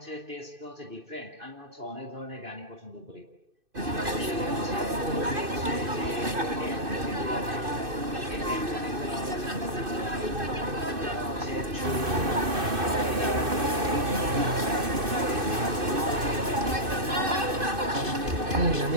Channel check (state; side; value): late; left; 2.6 ms